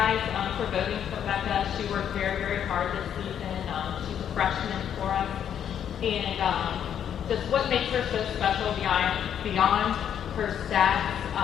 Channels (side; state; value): right; quieter; 9.1 dB